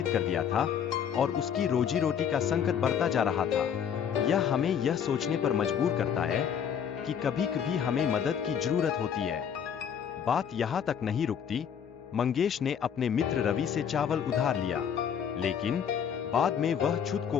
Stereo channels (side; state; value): right; quieter; 8.0 dB